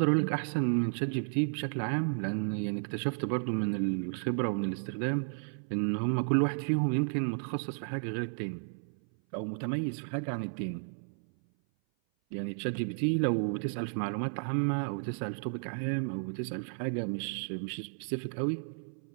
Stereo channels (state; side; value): silent; left; 56 dB below the other